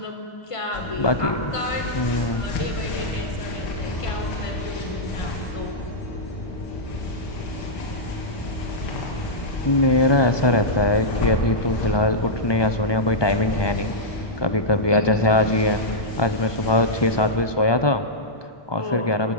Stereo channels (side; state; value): right; late; 1.2 ms